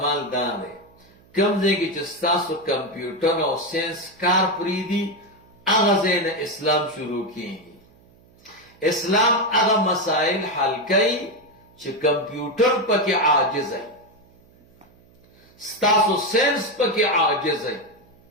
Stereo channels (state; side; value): noise; right; hum, 29 dB below the sound